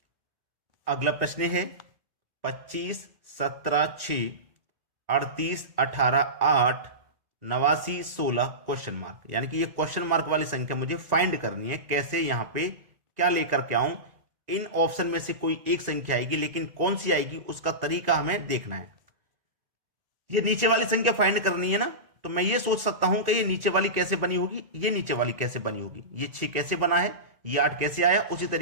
अगला प्रश्न है 25, 17, 6, 38, 18, 8, 89, 16 क्वेश्चन मार्क, यानी कि ये क्वेश्चन मार्क वाली संख्या मुझे फाइंड करनी है। कैसे, यहां पे क्या लेकर के आऊं? इन ऑप्शन में से कोई एक संख्या आएगी, लेकिन कौन सी आएगी उसका तरीका हमें देखना है। ये नीचे वाली संख्या फाइंड करनी है ना, तो मैं ये सोच सकता हूं कि ये नीचे वाली कैसे बनी होगी, ये नीचे वाली कैसे बनी होगी, ये 6 कैसे बना है, ये 8 कैसे आया, उसी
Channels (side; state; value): left; late; 1.9 ms